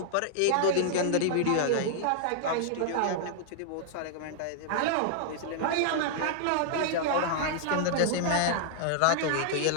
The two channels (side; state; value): both; different; correlation -0.01